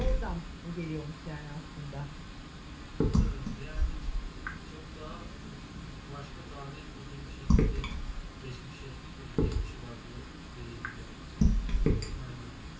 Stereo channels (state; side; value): identical; both; correlation 1.00